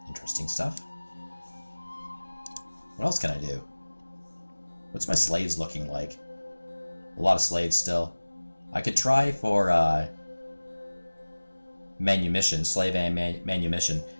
Interesting stuff. What else can I do? What's my slaves looking like? A lot of slaves still. I could try for manumission, slave and manumission.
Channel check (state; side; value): inverted; both; correlation -1.00